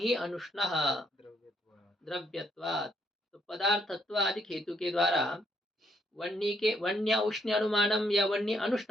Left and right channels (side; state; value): both; normal; correlation 0.71